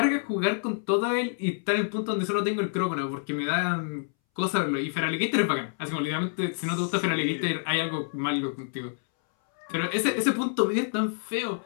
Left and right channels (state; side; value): silent; right; 60 dB below the other